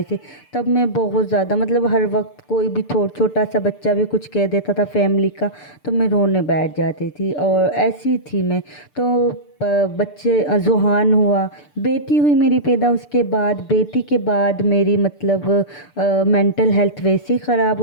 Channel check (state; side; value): late; right; 6.8 ms